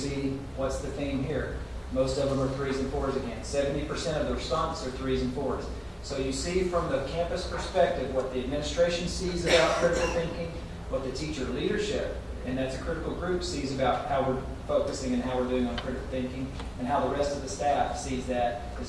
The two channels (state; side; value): identical; both; correlation 1.00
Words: what's the theme here. Most of them are 3s and 4s again. 70% of the responses are 3s and 4s. So you see from the campus perspective what the administration sees about critical thinking, what the teacher leadership, and that's a critical group, sees about how we're focusing and how we're doing on critical thinking, and how the rest of the staff sees that